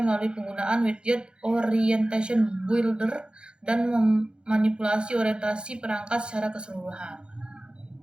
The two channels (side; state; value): left; late; 0.051 ms